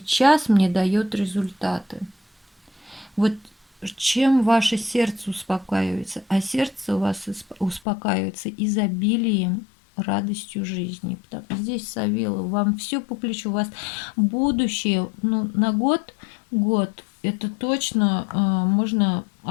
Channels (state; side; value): drops out; right; at 7.8 s